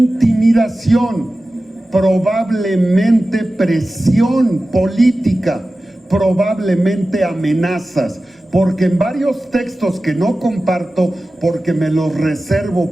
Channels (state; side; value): normal; both; correlation 0.95